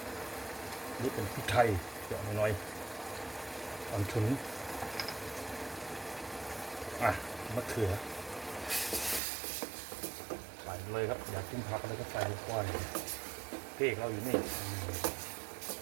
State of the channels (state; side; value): drops out; left; at 9.2 s